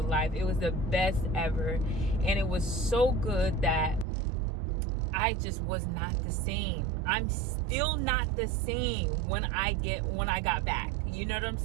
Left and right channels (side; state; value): left; drops out; at 4.0 s